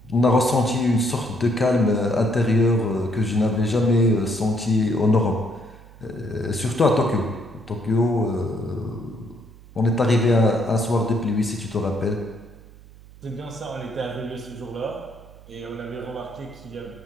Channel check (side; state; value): right; noise; hum, 21 dB below the sound